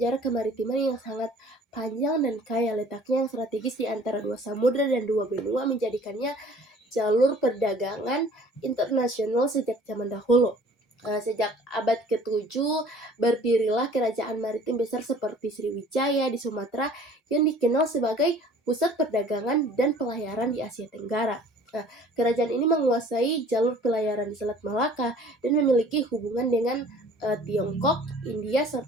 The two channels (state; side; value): normal; both; correlation 0.51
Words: kemaritiman yang sangat panjang dan kaya, letaknya yang strategis di antara dua samudra dan dua benua menjadikannya jalur perdagangan internasional sejak zaman dahulu. Sejak abad ke-7 berdirilah kerajaan maritim besar seperti Sriwijaya di Sumatera yang dikenal sebagai pusat perdagangan dan pelayaran di Asia Tenggara. Kerajaan ini menguasai jalur pelayaran di Selat Malaka dan memiliki hubungan dengan Tiongkok, India,